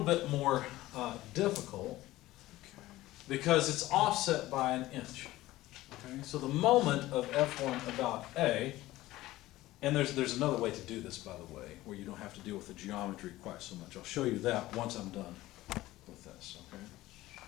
bit more difficult because it's offset by an inch. Okay? So the moment of F1 about A, and there's another way to do this, by the way, where you don't have to deal with the geometry quite so much. I'll show you that once I'm done with this, okay?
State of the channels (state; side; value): quieter; right; 16.8 dB